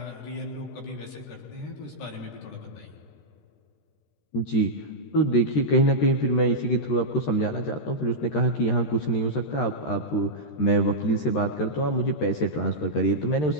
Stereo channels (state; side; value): late; right; 13 ms